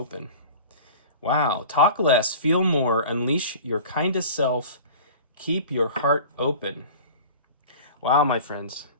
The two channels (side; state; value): both; inverted; correlation -0.39